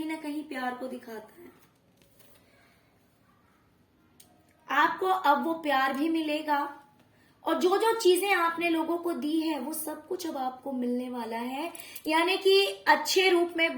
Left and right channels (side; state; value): both; identical; correlation 1.00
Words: ना कहीं प्यार को दिखाता है। आपको अब वो प्यार भी मिलेगा, और जो जो चीजें आपने लोगों को दी है वो सब कुछ अब आपको मिलने वाला है। यानी कि अच्छे रूप में,